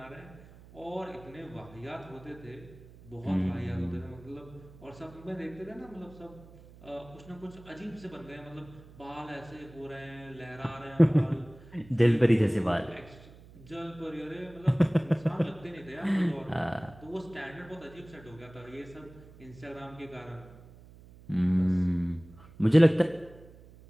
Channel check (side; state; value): right; noise; hum, 21 dB below the sound